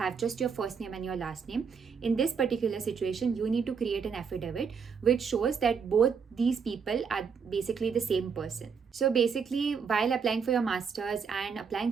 just your first name and your last name, in this particular situation you need to create an affidavit which shows that both these people are basically the same person. So basically, while applying for your masters and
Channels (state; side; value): quieter; left; 6.1 dB